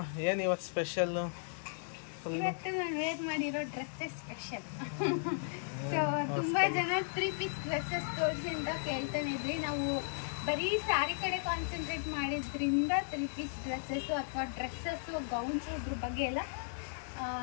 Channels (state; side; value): silent; right; digital silence